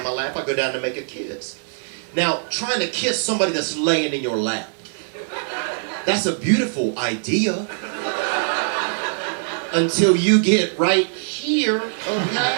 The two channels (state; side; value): silent; left; digital silence